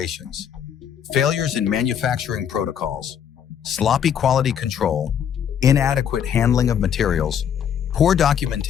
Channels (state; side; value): quieter; right; 8.6 dB